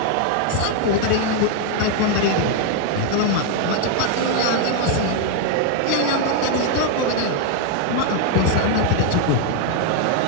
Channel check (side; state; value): both; different; correlation 0.01